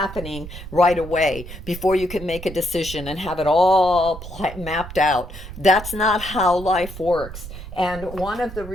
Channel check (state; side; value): noise; right; rumble, 12 dB below the sound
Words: right away before you can make a decision and have it all mapped out. That's not how life works. And one of the